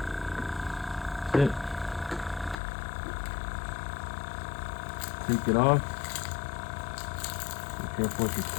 That's it. Take it off. Be careful with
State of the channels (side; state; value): right; drops out; at 2.6 s